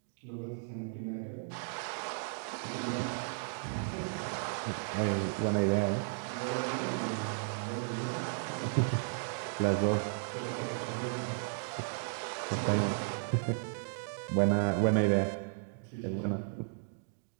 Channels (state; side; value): silent; left; digital silence